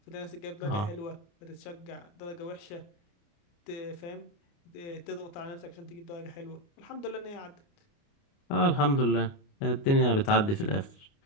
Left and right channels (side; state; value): right; late; 29 ms